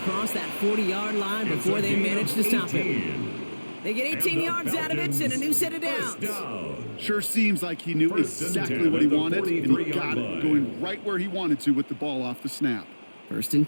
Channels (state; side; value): inverted; both; correlation -1.00